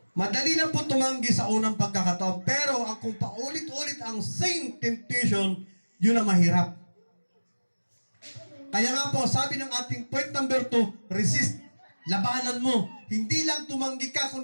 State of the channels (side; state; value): both; inverted; correlation -1.00